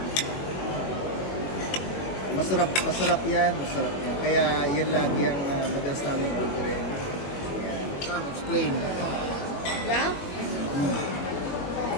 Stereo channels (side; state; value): right; late; 21 ms